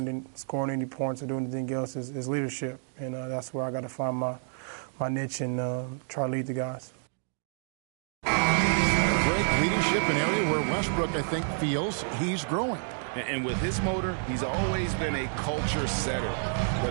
than scoring any points or doing anything else is leadership. And that's where I got to find my niche and try to lead the guys. Great leadership, an area where Westbrook, I think, feels he's growing. And with his motor, he's always been a culture setter.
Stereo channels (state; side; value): silent; left; digital silence